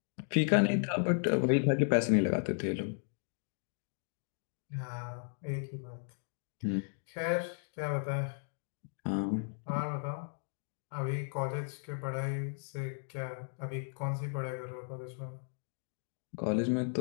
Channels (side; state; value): right; silent; 54 dB below the other